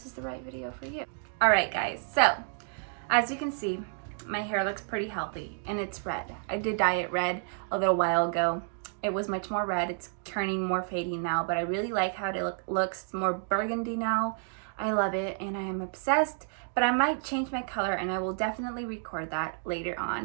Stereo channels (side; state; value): left; silent; 58 dB below the other